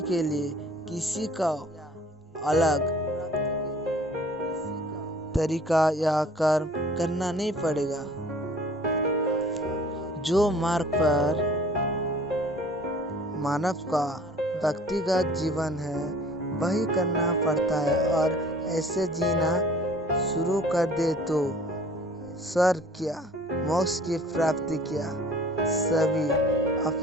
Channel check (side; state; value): both; normal; correlation 0.51